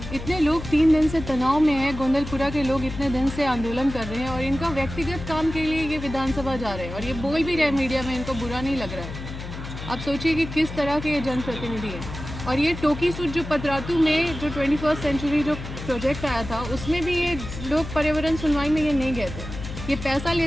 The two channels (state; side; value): noise; left; hum, 9 dB below the sound